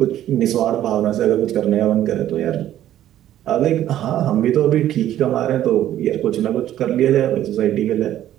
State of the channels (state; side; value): quieter; left; 12.2 dB